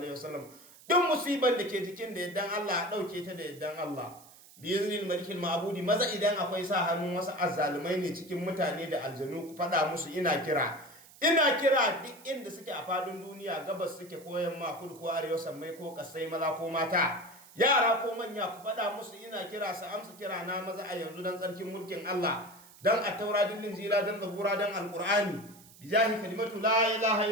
wasallam duk musiban da ke jikin da yaddan Allah a ɗauke ta da yaddan Allah biyaznil malikil ma'budi maza idan akwai sa hannun wasu azzalumai ne cikin mutane da aljanu ku faɗa musu ina kira duk inda suke a fadin duniya gabas suke ko yamma kudu ko arewa sammai ko kasai maza ko mata yara ko manya ku faɗa musu ina kira su amsa kira na maza a yanzu dan tsarkin mulkin Allah dan a taura din injila dan zabura dan alqur'ani bijahi kalimatu la ilaha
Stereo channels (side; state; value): right; noise; hiss, 22 dB below the sound